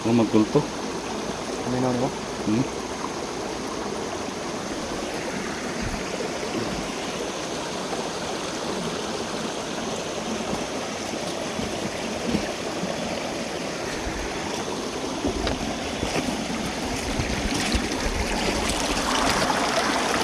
Yung magkulto? May naon ba?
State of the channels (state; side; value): identical; both; correlation 1.00